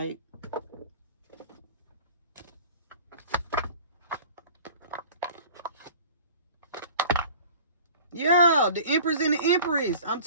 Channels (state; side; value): inverted; both; correlation -0.44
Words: Yeah, the Empress and the Empress. I'm